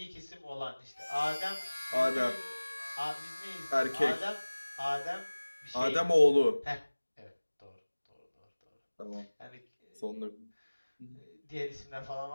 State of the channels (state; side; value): inverted; both; correlation -1.00